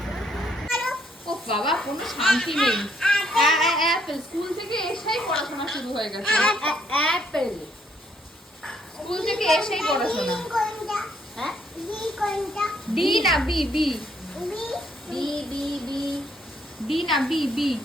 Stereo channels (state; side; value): normal; both; correlation 0.70